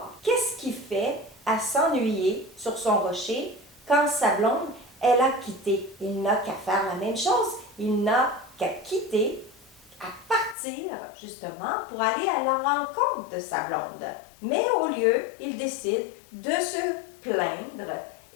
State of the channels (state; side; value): drops out; right; at 10.6 s